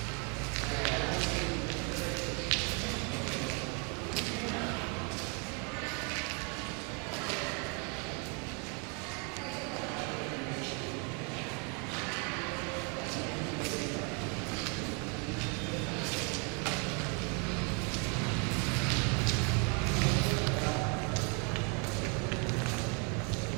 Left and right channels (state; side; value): quieter; left; 35.3 dB